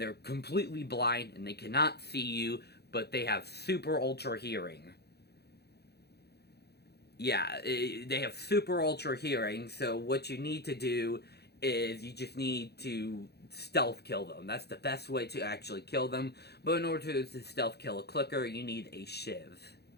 they're completely blind and they cannot see you, but they have super ultra hearing. Yeah, they have super ultra hearing, so what you need to do is you just need to stealth kill them. That's the best way to actually kill them, but in order to stealth kill a clicker, you need a shiv,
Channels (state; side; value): late; right; 0.48 ms